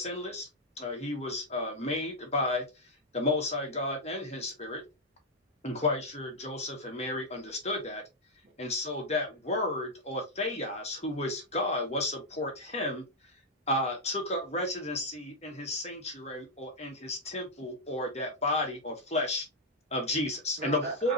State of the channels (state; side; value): normal; both; correlation -0.03